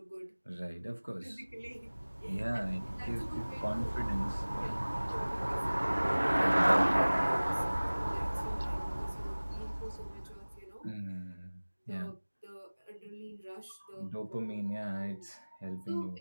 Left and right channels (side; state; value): both; inverted; correlation -1.00